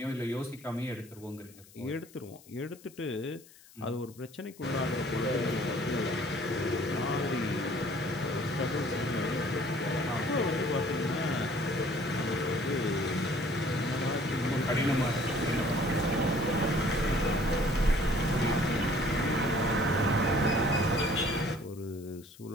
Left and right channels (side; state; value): left; noise; hiss, 23 dB below the sound